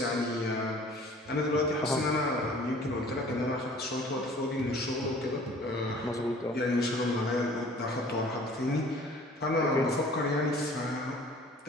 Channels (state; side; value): normal; both; correlation 0.50